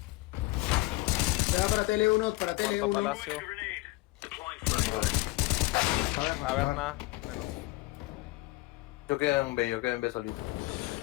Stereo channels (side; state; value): right; quieter; 20.6 dB